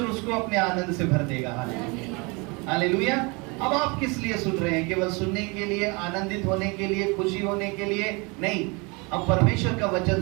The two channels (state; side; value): quieter; left; 28.9 dB